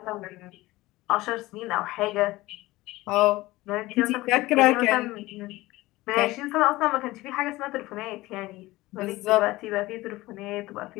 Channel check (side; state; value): right; quieter; 18.9 dB